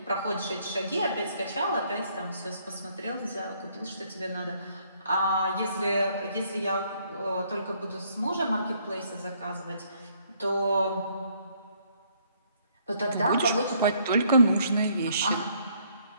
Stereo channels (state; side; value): inverted; both; correlation -0.66